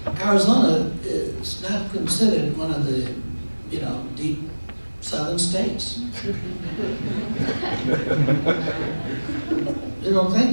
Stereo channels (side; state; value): both; inverted; correlation -1.00